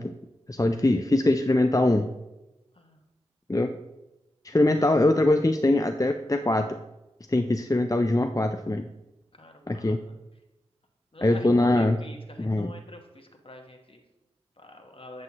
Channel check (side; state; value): both; normal; correlation 0.89